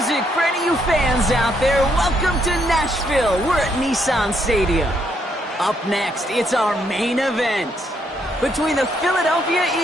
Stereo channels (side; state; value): both; normal; correlation 0.74